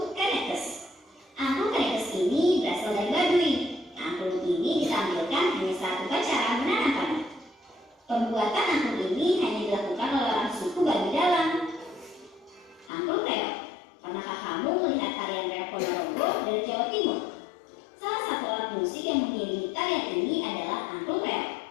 Kanekes. Angklung Kanekes ini berasal dari Baduy. Angklung ini ditampilkan hanya saat upacara menanam padi. Pembuatan angklung ini hanya dilakukan oleh orang suku Baduy Dalam. Angklung Reok. Pernahkah kamu melihat tarian reok Ponorogo dari Jawa Timur? Salah satu alat musik yang mengiringi tarian ini adalah angklung reok.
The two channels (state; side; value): drops out; right; at 12.9 s